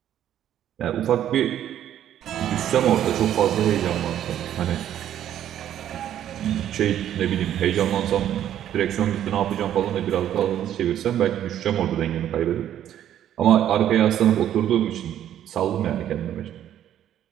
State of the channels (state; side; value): quieter; left; 11.0 dB